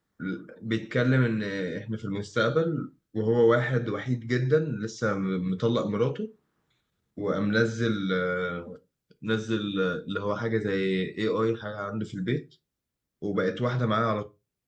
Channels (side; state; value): both; identical; correlation 1.00